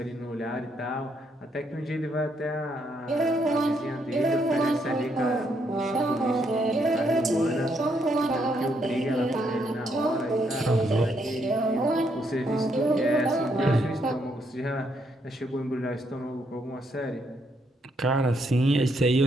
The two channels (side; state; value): both; normal; correlation 0.75